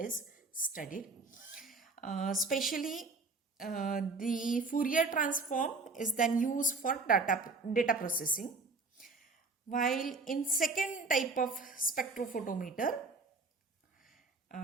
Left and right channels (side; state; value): left; quieter; 3.9 dB